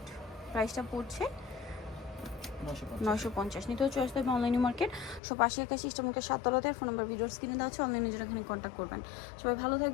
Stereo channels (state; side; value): drops out; right; at 5.2 s